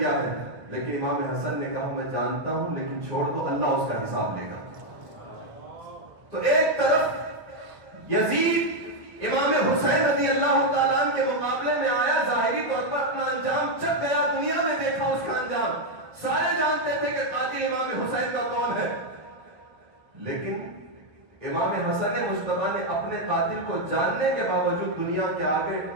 ہے؟ لیکن امام حسن نے کہا میں جانتا ہوں لیکن چھوڑ دو، اللہ اس کا حساب لے گا۔ تو ایک طرف یزید امام حسین رضی اللہ تعالیٰ عنہ کے مقابلے میں آیا، ظاہری طور پر اپنا انجام چک گیا، دنیا میں دیکھا اس کا انجام، سارے جانتے تھے کہ قاتل امام حسین کا کون ہے، لیکن امام حسن مصطفیٰ نے اپنے قاتل کو جاننے کے باوجود دنیا کے آگے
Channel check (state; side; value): late; left; 1.5 ms